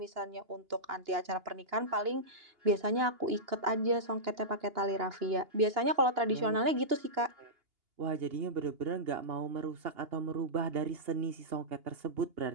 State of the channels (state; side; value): late; left; 2.9 ms